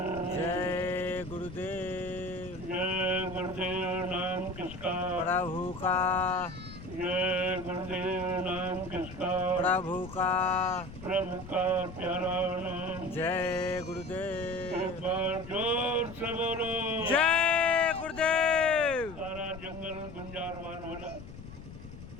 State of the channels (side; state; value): left; noise; rumble, 14 dB below the sound